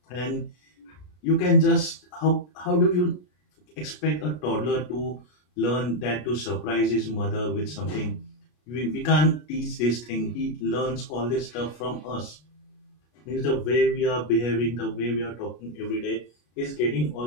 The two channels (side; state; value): right; late; 33 ms